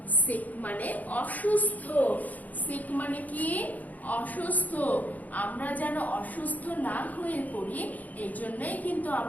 সিক মানে অসুস্থ। সিক মানে কি? অসুস্থ। আমরা যেন অসুস্থ না হয়ে পড়ি, এই জন্যই কিন্তু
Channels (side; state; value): right; late; 0.078 ms